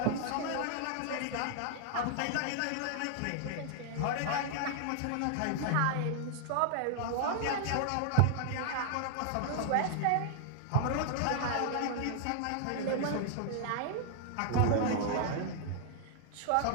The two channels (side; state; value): both; different; correlation -0.01